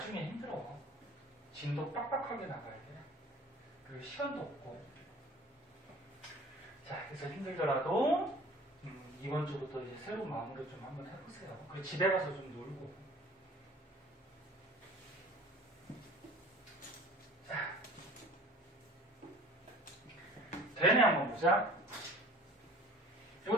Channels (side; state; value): both; normal; correlation 0.46